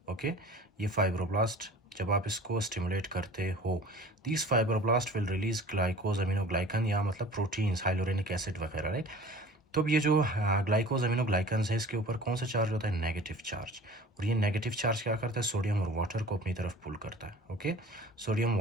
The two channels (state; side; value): normal; both; correlation 0.43